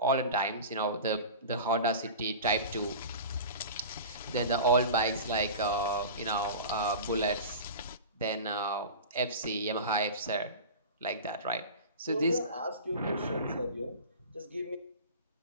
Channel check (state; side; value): inverted; both; correlation -0.33